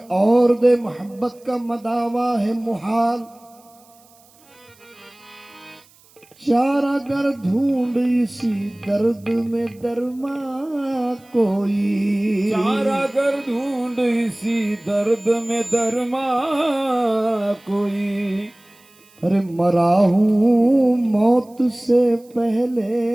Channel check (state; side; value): noise; right; hiss, 29 dB below the sound